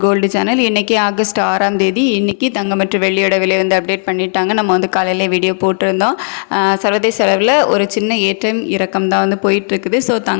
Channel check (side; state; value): right; silent; digital silence